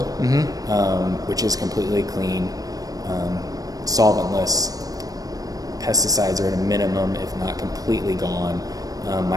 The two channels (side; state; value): left; late; 0.18 ms